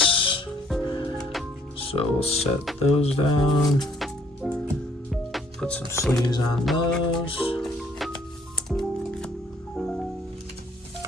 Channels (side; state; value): both; normal; correlation 0.64